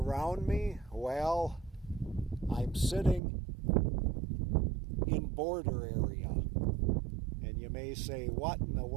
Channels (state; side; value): drops out; left; at 3.2 s